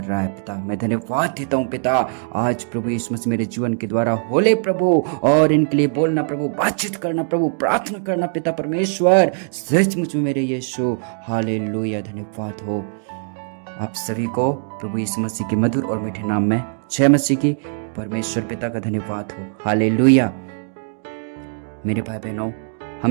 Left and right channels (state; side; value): silent; left; 59 dB below the other